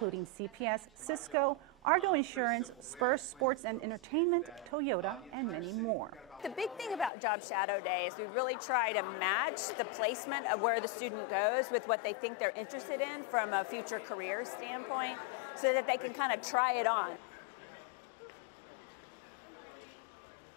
CPS, Cisco, Argo Insurance, Spurs Sports and Entertainment, Toyota, and many more. The big thing about Job Shadow Day is we really try to match the placement of where the student goes with what they think they're interested in from a future career standpoint so that they can kind of try it on. Every year, the number of business participation doubles,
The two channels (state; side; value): drops out; right; at 7.1 s